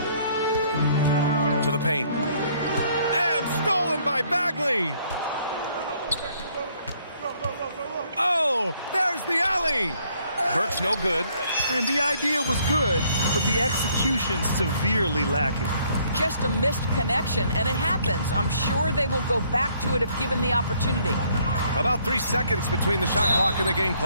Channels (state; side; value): inverted; both; correlation -0.65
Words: To the paint. And stolen by Bagley. Oh, there's the alley. Burke's no good. And the idea was good, but the execution severely lacking. Just a missed connection, and it happens. I'm sure they will go back to it if given the opportunity. About 3 seconds between the shot clock and the game